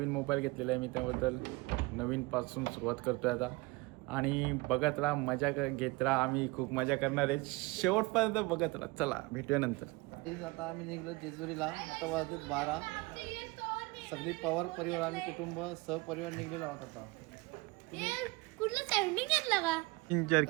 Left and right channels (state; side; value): quieter; left; 23.6 dB